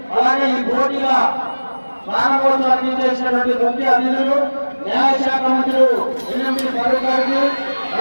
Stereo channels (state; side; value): inverted; both; correlation -1.00